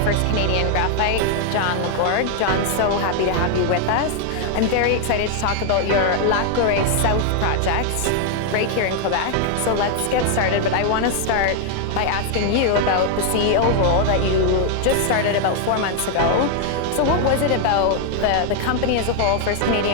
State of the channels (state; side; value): different; both; correlation 0.00